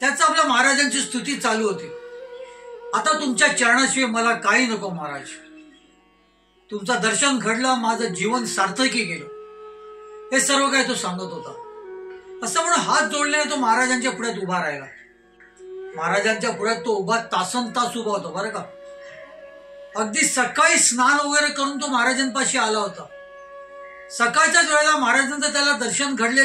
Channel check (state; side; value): identical; both; correlation 1.00